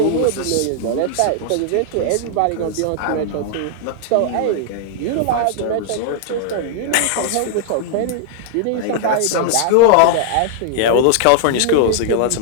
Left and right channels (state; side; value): different; both; correlation -0.01